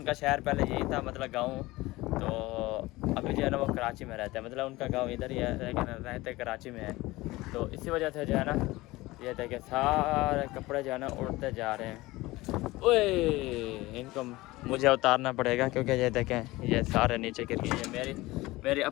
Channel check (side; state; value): right; quieter; 19.7 dB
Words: शहर पहले यही था, मतलब गांव, तो अभी जो है ना वो कराची में रहते हैं, मतलब उनका गांव इधर ही है लेकिन रहते कराची में है। तो इसी वजह से जो है ना ये देखे सारे कपड़े जो है ना उड़ते जा रहे हैं। ओए इनको मुझे उतारना पड़ेगा क्योंकि ये देखें ये सारे नीचे गिर गए। ये मेरी